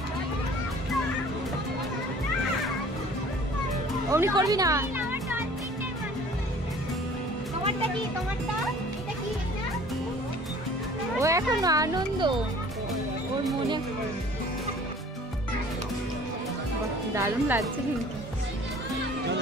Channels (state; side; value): normal; both; correlation 0.50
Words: অমনি করবি না। ও এখন আনন্দ, ওর মনে দারুণ লাগছে কিন্তু।